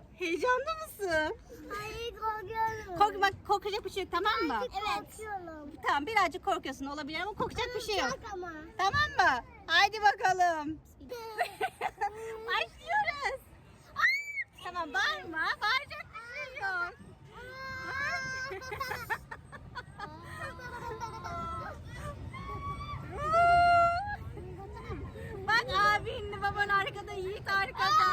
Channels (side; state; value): both; identical; correlation 1.00